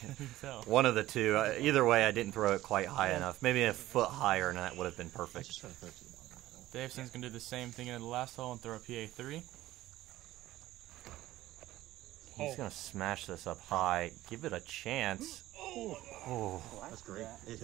tell. One of the two. Either way, I didn't throw it quite high enough. Maybe a foot higher, and that would have been perfect. Davison's going to do the same thing in the last hole and throw a PA3. He's going to smash this up high. Give it a chance. Oh, that's great.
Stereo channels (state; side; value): quieter; left; 15.7 dB